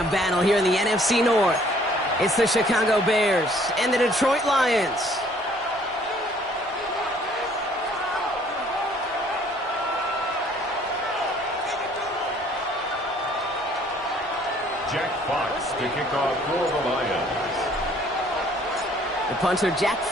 a battle here in the NFC North. It's the Chicago Bears and the Detroit Lions. Jack Fox to kick off for the Lions. The punter, Jack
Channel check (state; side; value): normal; both; correlation 0.59